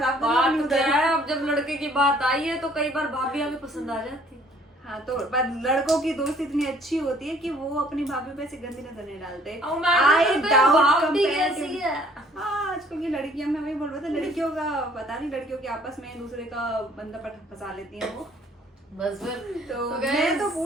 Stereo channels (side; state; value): both; normal; correlation 0.58